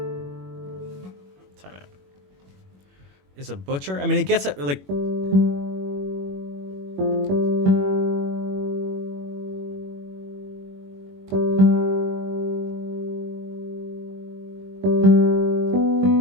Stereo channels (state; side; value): late; left; 21 ms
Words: out. Is a butcher? I mean, it gets at like.